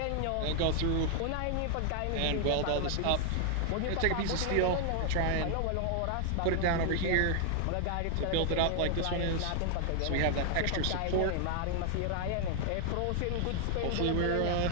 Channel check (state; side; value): different; both; correlation 0.00